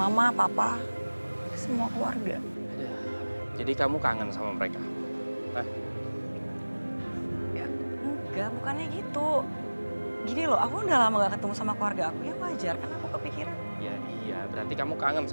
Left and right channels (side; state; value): both; inverted; correlation -1.00